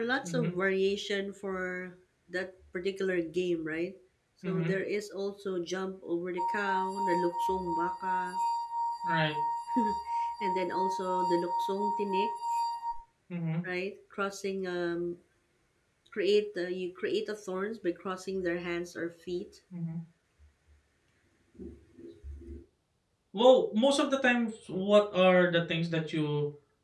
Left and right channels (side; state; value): both; identical; correlation 1.00